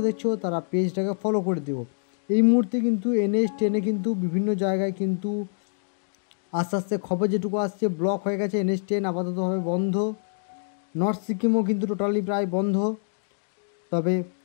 দেখছো তারা পেজটাকে ফলো করে দিও। এই মুহূর্তে কিন্তু NH10 কিন্তু বিভিন্ন জায়গায় কিন্তু আস্তে আস্তে খবর যেটুকু আসছে ব্লক হয়ে গেছে। NH10 আপাততভাবে বন্ধ। নর্থ সিকিমও কিন্তু টোটালি প্রায় বন্ধ, তবে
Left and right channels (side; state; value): right; silent; digital silence